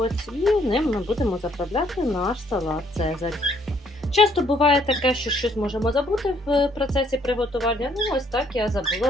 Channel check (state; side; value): normal; both; correlation 0.66